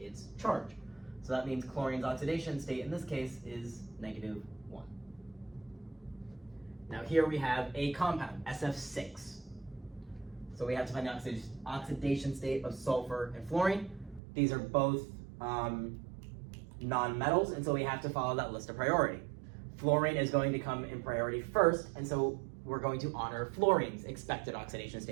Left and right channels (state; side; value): drops out; left; at 14.2 s